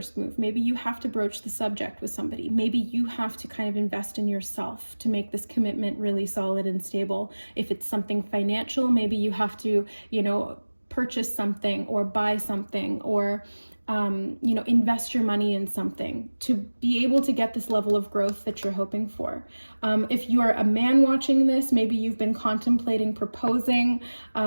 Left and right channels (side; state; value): both; inverted; correlation -1.00